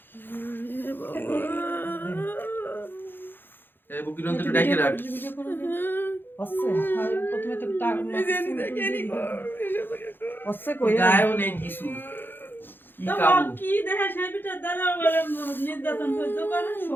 এই বুকিরন্ত ডাইকে রাখ। হচ্ছে প্রথমে তো টাকা হচ্ছে কই গায়ও নেই কিছু কি তো কাবু কি দেখে সেই পিঠা দ্বারা বলে নির্যাতন করতে পারে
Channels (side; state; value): right; late; 0.098 ms